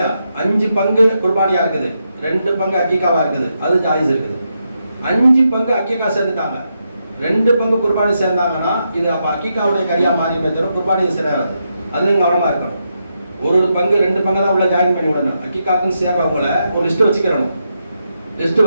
5 பங்கு குர்பானியா இருக்குது, 2 பங்கு அக்கீகாவா இருக்குது, அது ஜாயிஸ் இருக்குது. 5 பங்கு அக்கீகா சேர்ந்துட்டாங்க, 2 பங்கு குர்பானி சேர்ந்தாங்கன்னா இது அப்ப அக்கீகாவுடைய கரியா மாறி தவிர குர்பானி சேராது. அதுல நீங்க கவனமா இருக்கணும். ஒரு பங்கு 2 பங்கு தான் உள்ள ஜாயின் பண்ணி விடணும். அக்கீகாக்குன்னு சேர்றவங்கள ஒரு லிஸ்ட் வச்சுக்கிறணும். லிஸ்ட்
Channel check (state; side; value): inverted; both; correlation -0.83